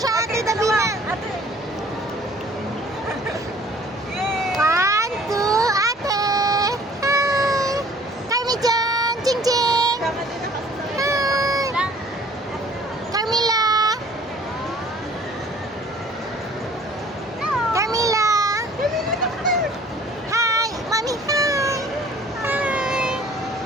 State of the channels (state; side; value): normal; both; correlation 0.53